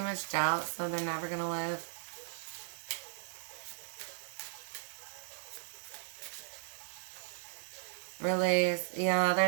much doubt, so they're never going to live. Release. Yeah,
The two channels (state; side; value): silent; left; digital silence